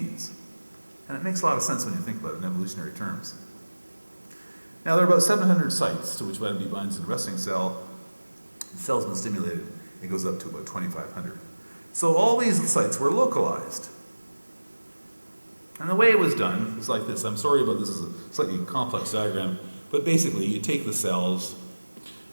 And it makes a lot of sense when you think about it in evolutionary terms. Now, there are about 700 sites to which vitamin D binds in a resting cell. The cell's been stimulated. It goes up to about 2,500. So all these sites were localized. And the way it was done was like this. I'm sorry about this, is a slightly complex diagram, but basically you take the cells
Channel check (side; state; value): both; inverted; correlation -1.00